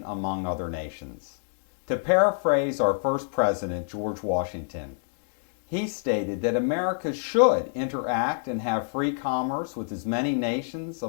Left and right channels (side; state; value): right; silent; digital silence